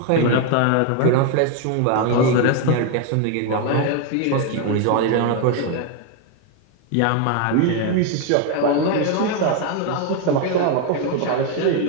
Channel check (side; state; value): both; different; correlation 0.01